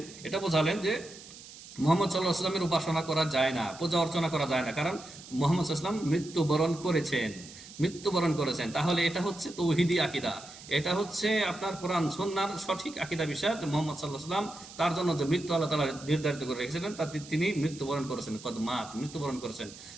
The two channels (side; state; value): right; noise; hiss, 17 dB below the sound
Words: এটা বোঝালেন যে মুহাম্মদ সাল্লাল্লাহু আলাইহি ওয়াসাল্লামের উপাসনা করা যায় না, পূজা অর্চনা করা যায় না, কারণ মুহাম্মদ সাল্লাল্লাহু আলাইহি ওয়াসাল্লাম মৃত্যুবরণ করেছেন। তাহলে এটা হচ্ছে তৌহিদি আকীদা, এটা হচ্ছে আপনার কোরআন সুন্নাহর সঠিক আকীদা বিষয় যে মুহাম্মদ সাল্লাল্লাহু আলাইহি ওয়াসাল্লাম তার জন্য যে মৃত্যু আল্লাহ তাআলা নির্ধারিত করে রেখেছিলেন তাতে তিনি মৃত্যুবরণ করেছেন, কদ মাত, মৃত্যুবরণ করেছেন।